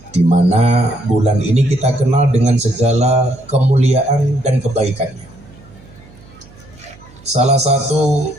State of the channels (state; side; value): noise; right; hum, 24 dB below the sound